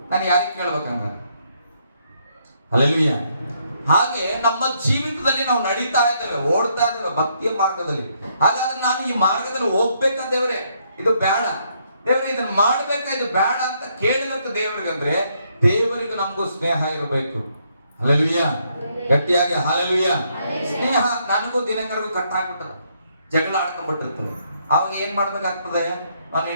ನಾನು ಯಾರಿಗೆ ಕೇಳ್ಬೇಕಂಗ? ಹಲ್ಲೆಲೂಯಾ. ಹಾಗೆ ನಮ್ಮ ಜೀವಿತದಲ್ಲಿ ನಾವು ನಡೀತಾ ಇದ್ದೇವೆ, ಓಡ್ತಾ ಇದ್ದೇವೆ ಭಕ್ತಿಯ ಮಾರ್ಗದಲ್ಲಿ. ಹಾಗಾದ್ರೆ ನಾನು ಈ ಮಾರ್ಗದಲ್ಲಿ ಹೋಗ್ಬೇಕಂತ ದೇವ್ರೆ, ಇದು ಬೇಡ ದೇವ್ರೆ, ಇದನ್ನ ಮಾಡ್ಬೇಕಾ, ಇದು ಬೇಡ ಅಂತ ಕೇಳಬೇಕು ದೇವರಿಗಂದ್ರೆ ದೇವರಿಗೂ ನಮಗೂ ಸ್ನೇಹ ಇರಬೇಕು. ಹಲ್ಲೆಲೂಯಾ. ಗಟ್ಟಿಯಾಗಿ ಹಲ್ಲೆಲೂಯಾ. ಸ್ನೇಹ ನನಗೂ ದಿನಕರಿಗೂ ಕಟ್ಟಾಗ್ಬಿಟ್ಟದ, ಜಗಳ ಆಡ್ಕೊಂಡ್ಬಿಟ್ಟಿರ್ತದೆ. ಅವಾಗ ಏನ್ ಮಾಡ್ಬೇಕಾಗ್ತದೆ, ನಾನು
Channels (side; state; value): both; inverted; correlation -0.73